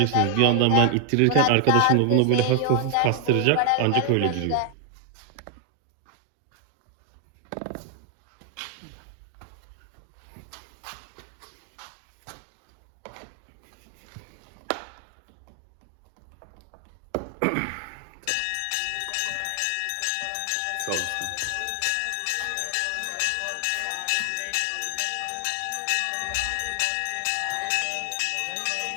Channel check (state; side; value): different; both; correlation 0.00